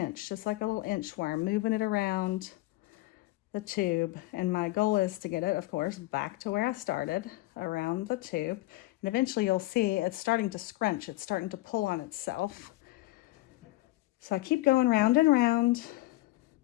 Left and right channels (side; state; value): right; quieter; 18.9 dB